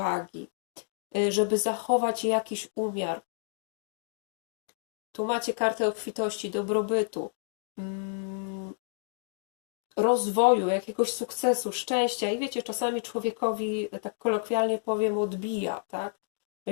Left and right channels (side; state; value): right; silent; digital silence